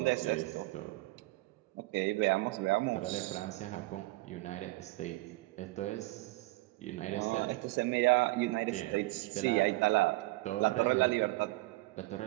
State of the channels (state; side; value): quieter; left; 20.5 dB